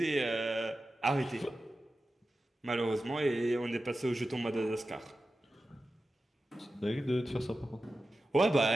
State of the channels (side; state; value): both; normal; correlation 0.93